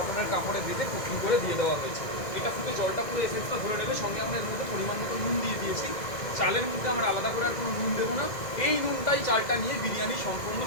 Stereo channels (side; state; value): right; late; 2.1 ms